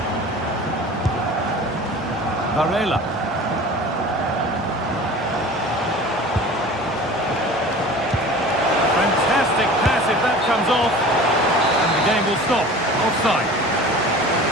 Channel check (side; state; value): both; normal; correlation 0.40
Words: Varela. Fantastic pass if that comes off. And the game will stop. Offside.